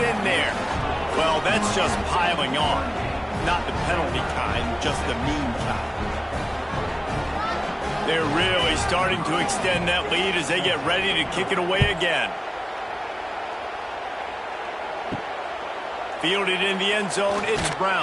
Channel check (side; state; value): both; identical; correlation 1.00